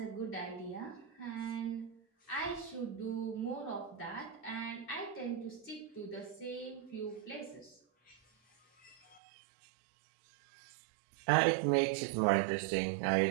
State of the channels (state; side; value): drops out; left; at 9.2 s